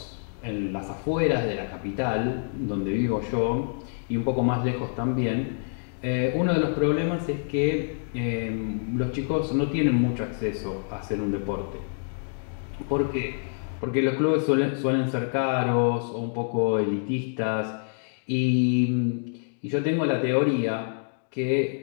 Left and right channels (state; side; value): silent; right; digital silence